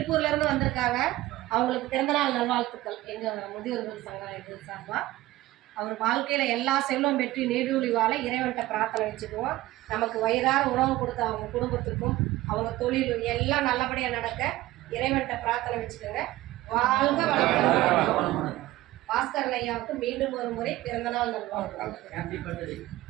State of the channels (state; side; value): quieter; left; 16.9 dB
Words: இருந்து வந்திருக்காங்க. அவங்களுக்கு பிறந்தநாள் நல்வாழ்த்துக்கள் எங்க முதியோர்கள் சங்கம் இது சார்பா. அவர் வாழ்க்கையில எல்லா செல்வம் பெற்று நீடூழி வாழ இறைவன்கிட்ட பிரார்த்தனை வச்சுக்குவோம். நமக்கு வயிறார உணவு கொடுத்த அவங்க குடும்பத்துக்கும் அவங்க தொழில் எல்லாம் நல்லபடியா நடக்க இறைவன்கிட்ட பிரார்த்தனை வச்சுக்கோங்க. வாழ்க வளமுடன். பாஸ்கரன் ஐயாவுக்கு மீண்டும் ஒரு முறை பிறந்தநாள் நல்வாழ்த்துக்கள்.